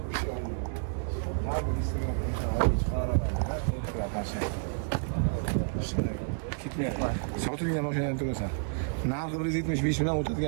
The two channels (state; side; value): silent; left; 58 dB below the other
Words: Sotilgan mashinani to'lasan. Narxi 175 million